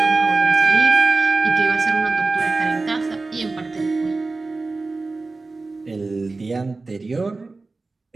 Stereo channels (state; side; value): quieter; left; 3.6 dB